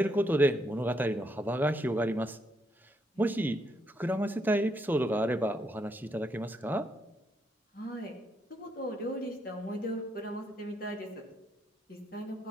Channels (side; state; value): both; normal; correlation 0.77